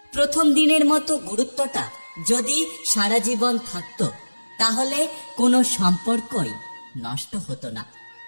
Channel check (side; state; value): both; inverted; correlation -1.00